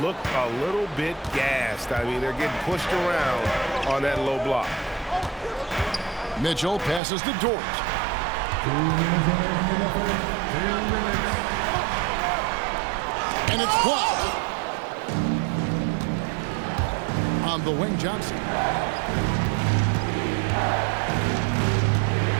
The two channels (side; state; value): left; drops out; at 7.0 s